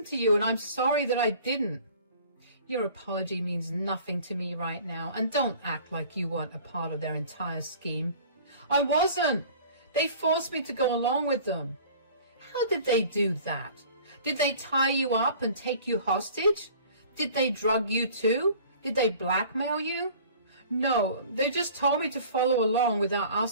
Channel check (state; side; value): inverted; both; correlation -0.47